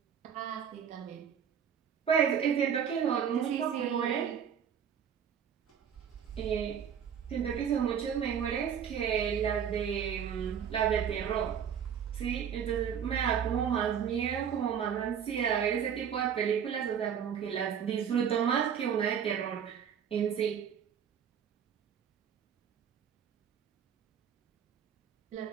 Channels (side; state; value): left; quieter; 8.1 dB